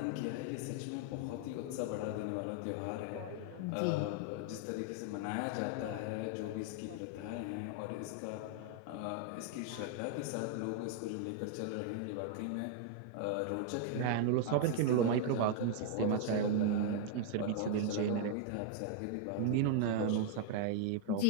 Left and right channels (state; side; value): different; both; correlation 0.00